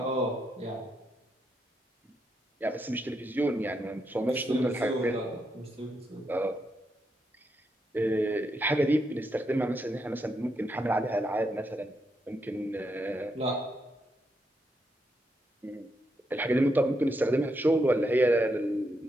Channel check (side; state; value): both; normal; correlation 0.81